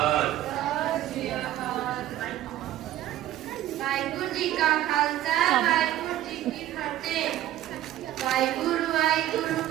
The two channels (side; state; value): left; quieter; 13.2 dB